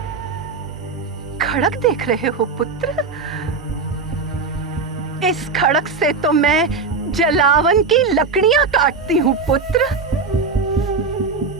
खड़क देख रहे हो पुत्र? इस खड़क से तो मैं जलावन की लकड़ियां काटती हूँ पुत्र।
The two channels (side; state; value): left; quieter; 4.5 dB